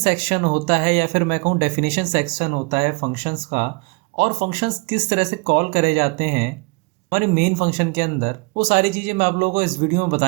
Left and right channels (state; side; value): quieter; left; 30.1 dB